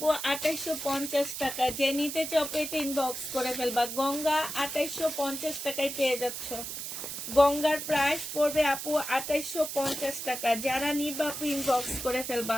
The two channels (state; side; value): noise; right; hiss, 6 dB below the sound